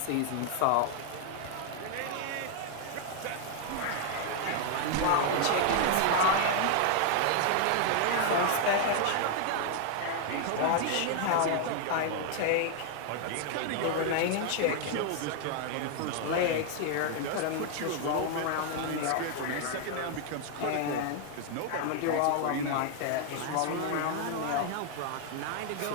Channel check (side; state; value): both; different; correlation 0.00